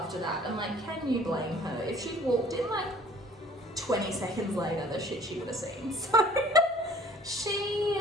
that. And like, can you blame her? If she'd walked in like 20 seconds later, the shit she would have seen. So she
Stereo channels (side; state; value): both; normal; correlation 0.53